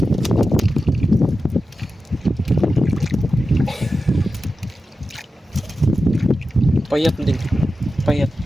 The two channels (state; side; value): normal; both; correlation 0.92